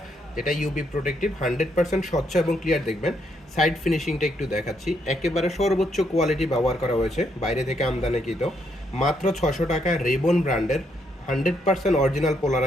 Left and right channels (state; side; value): normal; both; correlation 0.75